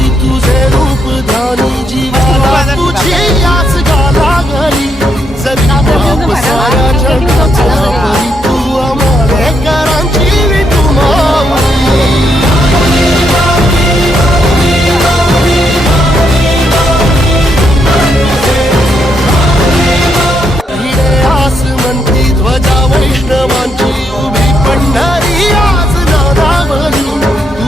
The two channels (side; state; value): both; normal; correlation 0.78